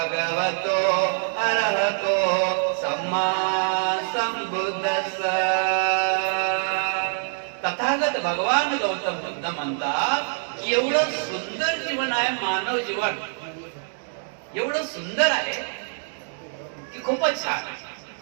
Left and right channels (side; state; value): left; silent; digital silence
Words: अरहतो सम्मा संबुद्धस्स तथागत भगवान गौतम बुद्ध म्हणतात की एवढं सुंदर जीवन आहे मानव जीवन एवढं सुंदर आहे की खूपच छान